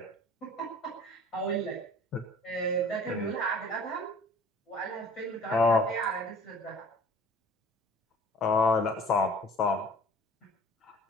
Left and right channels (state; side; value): normal; both; correlation 0.49